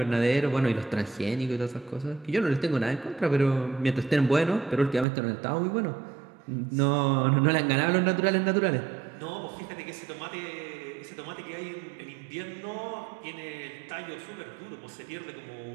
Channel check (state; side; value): drops out; left; at 5.1 s